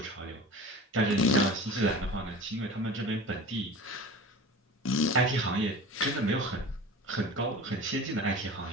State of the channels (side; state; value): both; normal; correlation 0.36